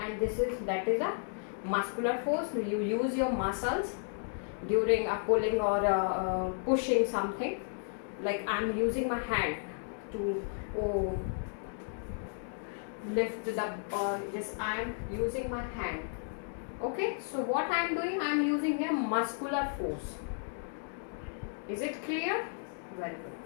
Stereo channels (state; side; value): silent; right; 55 dB below the other